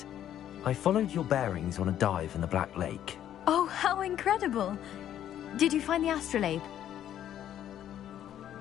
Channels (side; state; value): right; quieter; 11.0 dB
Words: I followed your bearings on a dive in the Black Lake. Oh, how incredible! Did you find the astrolabe?